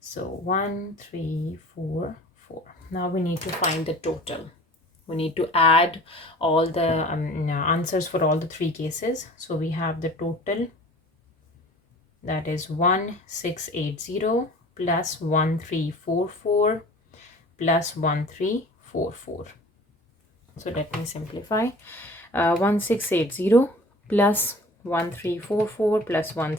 1344. Now we need to find the total. We need to add all the answers for all the 3 cases. So we have the total, that is 1680 plus 1344 plus 1344. So let me simplify. 1680 plus 1344 plus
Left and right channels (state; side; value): normal; both; correlation 0.44